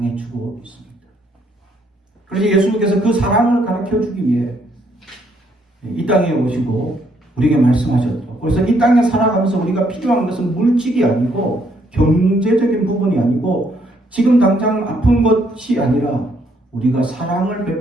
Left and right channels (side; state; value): both; normal; correlation 0.70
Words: 주고 있습니다. 그래서 예수님께서 그 사랑을 가르쳐 주기 위해 이 땅에 오시고 우리에게 말씀하셨죠. 그래서 이 땅에 살아가면서 우리가 필요한 것은 물질이 아니고 경제적인 부분이 아니고 지금 당장 아픈 것이 아니라 우리가 사랑을